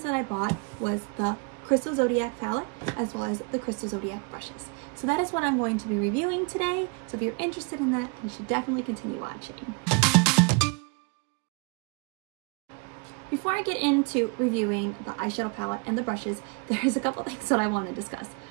that I bought was the Crystal Zodiac palette, as well as the Crystal Zodiac brushes. So that is what I'm going to be reviewing today. So if you're interested in that, you should definitely continue watching. Before I get into reviewing the eyeshadow palette and the brushes, there's a couple things that I want to discuss.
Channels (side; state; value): left; quieter; 33.4 dB